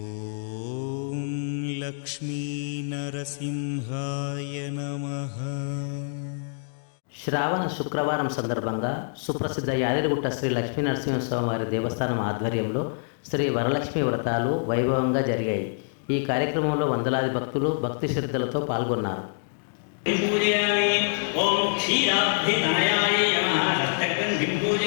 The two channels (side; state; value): right; silent; digital silence